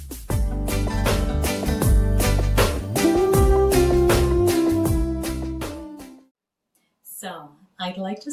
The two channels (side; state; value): both; identical; correlation 1.00